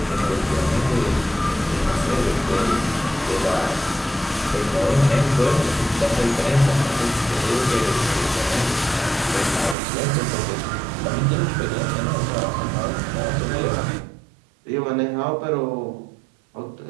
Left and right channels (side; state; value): left; drops out; at 9.8 s